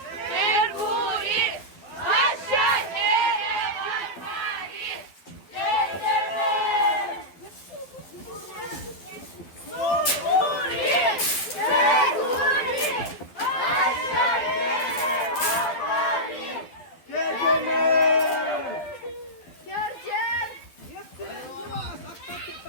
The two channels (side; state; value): right; late; 12 ms